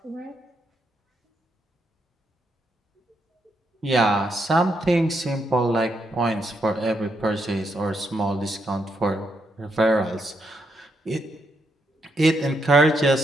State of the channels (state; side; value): normal; both; correlation 0.79